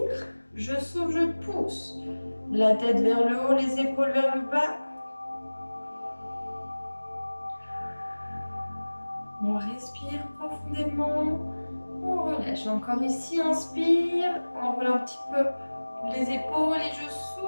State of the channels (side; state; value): both; inverted; correlation -1.00